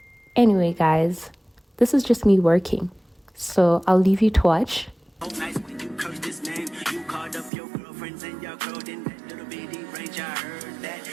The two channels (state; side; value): drops out; left; at 7.5 s